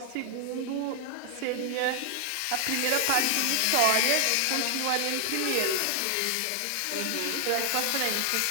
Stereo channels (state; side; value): different; both; correlation 0.00